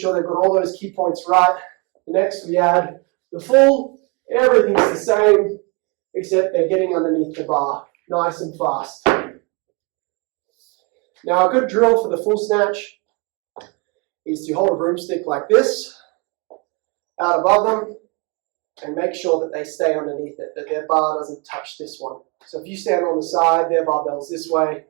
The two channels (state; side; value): quieter; left; 30.7 dB